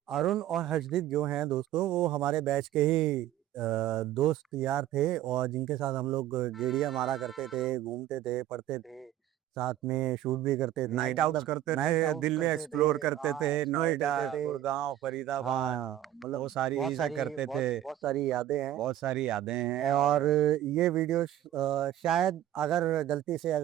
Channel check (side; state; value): left; quieter; 12.8 dB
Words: अरुण और हर्षदीप जो हैं दोस्तों, वो हमारे बैच के ही दोस्त यार थे, और जिनके साथ हम लोग गेड़िया मारा करते थे, घूमते थे, पढ़ते थे, साथ में शूट भी करते थे, नाइट आउट्स मतलब करते थे, नाइट आउट दिल्ली करते थे। एक्सप्लोर करते थे, हाँ, एक्सप्लोर नोएडा, करते थे। गुड़गांव, फरीदाबाद, हाँ, वो मतलब सारी बहुत चीजें सारी करते थे। बहुत बहुत सारी यादें हैं। बहुत सारी यादें हैं। और और ये वीडियो शायद अगर गलती से